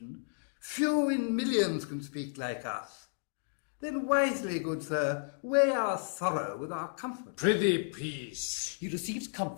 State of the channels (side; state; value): right; silent; digital silence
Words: few in millions can speak like us. Then wisely, good sir, weigh our sorrow with our comfort. Prithee, peace. He receives